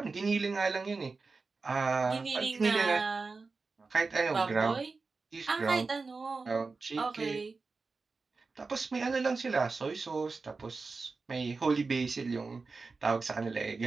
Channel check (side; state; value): left; quieter; 4.1 dB